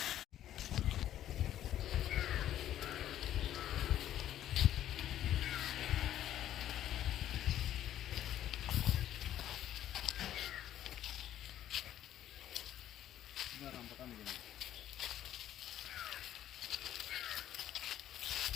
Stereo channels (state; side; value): quieter; right; 11.9 dB